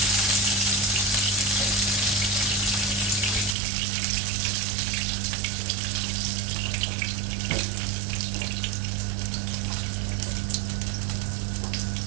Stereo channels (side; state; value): left; drops out; at 3.6 s